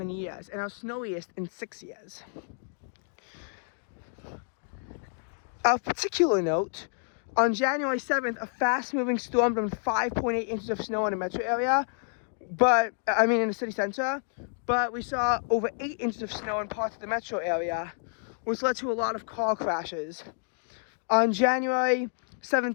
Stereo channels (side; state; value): right; silent; 58 dB below the other